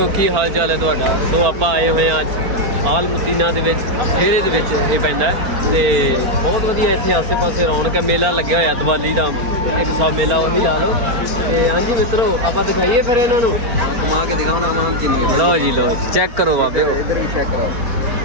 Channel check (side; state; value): left; late; 4.3 ms